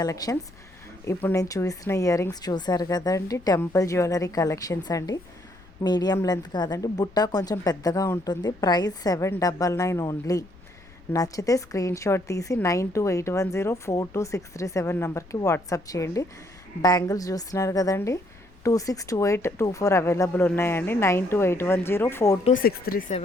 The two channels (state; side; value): noise; left; rumble, 24 dB below the sound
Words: ఇప్పుడు నేను చూసిన ఇయర్ రింగ్స్ చూసారు కదండి, టెంపుల్ జ్యువెలరీ కలెక్షన్స్ అండి. మీడియం లెంత్ కాదండి, బుట్ట కొంచెం పెద్దగా ఉంటుంది. Price 799 only. నచ్చితే స్క్రీన్ షాట్ తీసి 9281042637 నెంబర్కి వాట్సాప్ చేయండి. బ్యాంగిల్స్ చూస్తున్నారు కదండి, 262824 అవైలబుల్ ఉన్నాయండి.